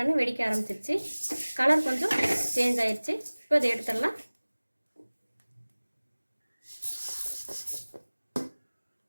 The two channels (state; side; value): inverted; both; correlation -1.00